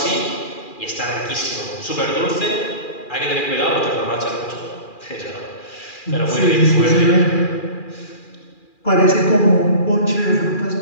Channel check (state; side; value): late; right; 2.4 ms